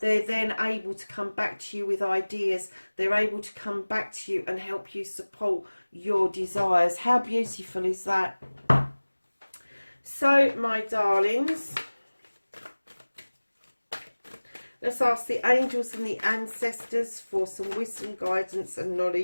then able to come back to you with ideas. They're able to come back to you and help you support your desires. How beautiful is that? So, my darlings, let's ask the angels and the ancestors for some wisdom, guidance and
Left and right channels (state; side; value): inverted; both; correlation -1.00